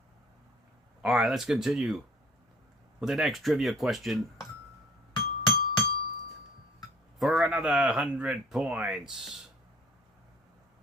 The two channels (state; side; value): normal; both; correlation 0.53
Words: All right, let's continue with the next trivia question. for another 100 points.